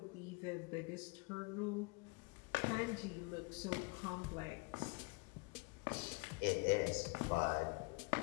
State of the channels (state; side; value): quieter; right; 29.2 dB